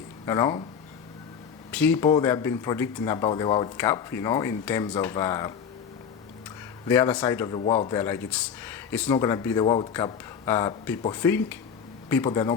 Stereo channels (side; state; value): right; quieter; 7.2 dB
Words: you know? People, they have been predicting about the World Cup, you know, in terms of the other side of the world. They're like, it's not gonna be the World Cup people think. People, they're not